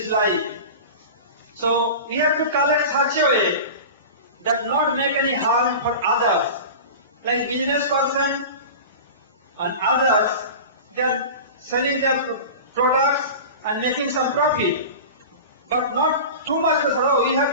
life. So we have to collect such a way that not make any harm for others. Like business person and others, they are selling their products and making some profit. But not too much,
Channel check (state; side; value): inverted; both; correlation -0.32